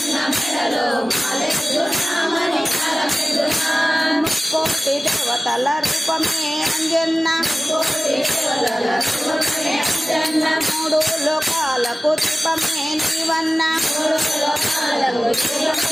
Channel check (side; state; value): both; normal; correlation 0.97